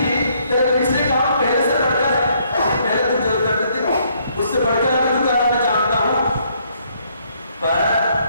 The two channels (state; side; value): inverted; both; correlation -0.68